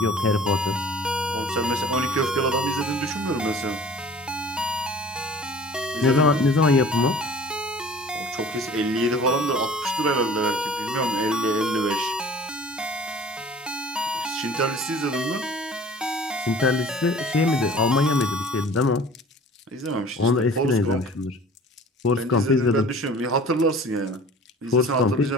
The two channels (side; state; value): both; normal; correlation 0.46